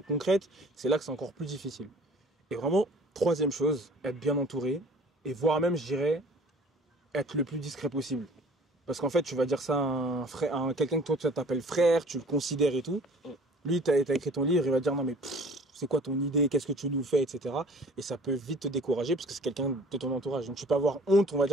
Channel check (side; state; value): both; normal; correlation 0.50